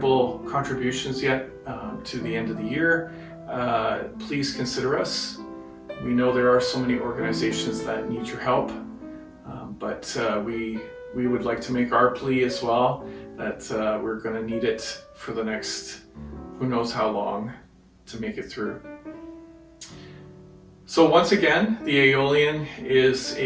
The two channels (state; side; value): identical; both; correlation 1.00